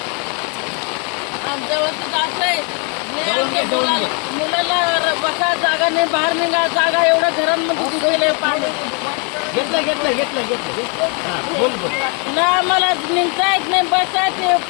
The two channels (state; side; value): quieter; right; 35.8 dB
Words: आमच्या वस्तीत असं आहे, मुलाला बसा जागा नाही, बाहेर निघा जागा, एवढ्या घरांमध्ये गेले पाणी। घेतलं बोल ना आम्हाला निघता येत नाही, बसा